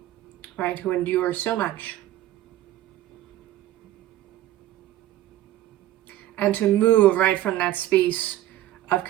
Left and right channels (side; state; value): left; quieter; 14.0 dB